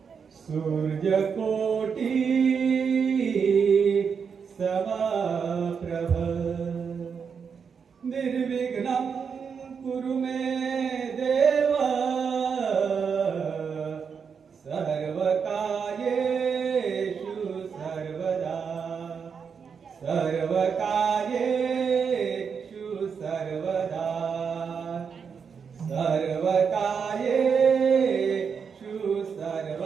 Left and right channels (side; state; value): left; quieter; 6.3 dB